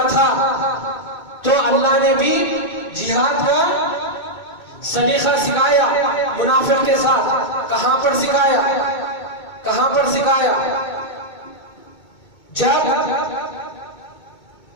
تھا، تو اللہ نے بھی جہاد کا سلیقہ سکھایا منافق کے ساتھ۔ کہاں پر سکھایا؟ کہاں پر سکھایا؟ جب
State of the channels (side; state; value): right; late; 2.2 ms